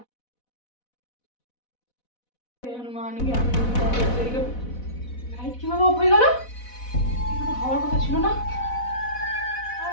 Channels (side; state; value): right; late; 4.1 ms